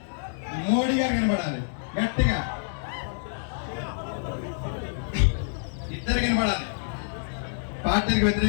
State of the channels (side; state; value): right; silent; digital silence